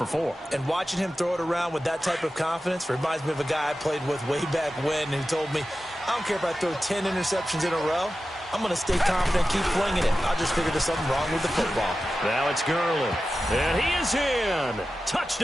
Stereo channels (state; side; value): normal; both; correlation 0.93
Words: 4. And watching him throw it around with that type of confidence reminds me of a guy I played with way back when who told me, I don't care if I throw 10 interceptions in a row. I'm going to stay confident, keep flinging it. I just figured there's something wrong with the football. Now it's Gurley. And he is in.